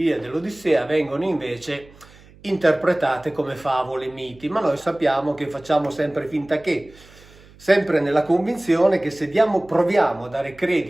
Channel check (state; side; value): noise; right; hum, 25 dB below the sound